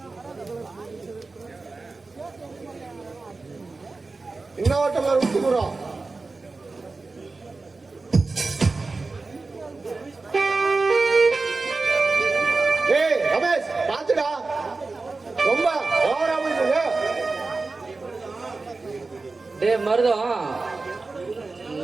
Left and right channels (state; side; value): quieter; left; 3.7 dB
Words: இன்னொருத்தவங்க ஊத்தி விடுறோம். ஏய் ரமேஷ், பாத்துடா, ரொம்ப ஓவரா போயிட்டு. டேய் மருதம்,